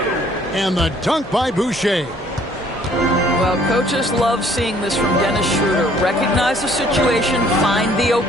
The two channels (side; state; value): both; normal; correlation 0.60